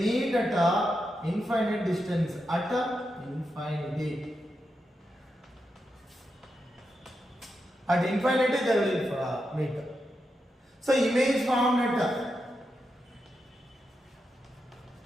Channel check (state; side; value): normal; both; correlation 0.86